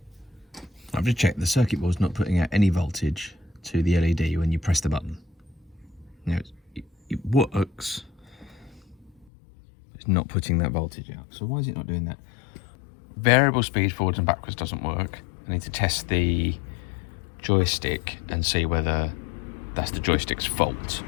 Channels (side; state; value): right; drops out; at 9.2 s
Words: I've just checked the circuit board's not putting out any voltage to the LED when you press the button. Now it works. It's not putting that voltage out. So why is it not doing that? Variable speed forwards and backwards doesn't work. I need to test the joystick and see whether that's the joystick's fault